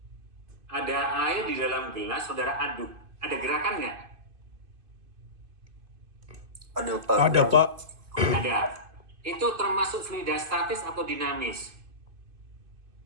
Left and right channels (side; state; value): left; late; 2.5 ms